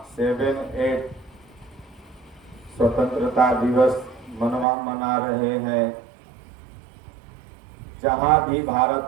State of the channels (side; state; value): left; drops out; at 4.7 s